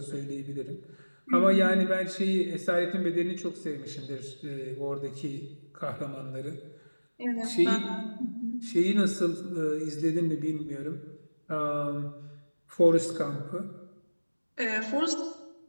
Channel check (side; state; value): both; inverted; correlation -1.00